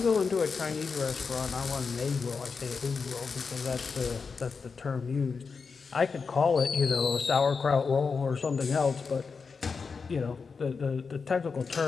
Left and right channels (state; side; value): quieter; right; 5.1 dB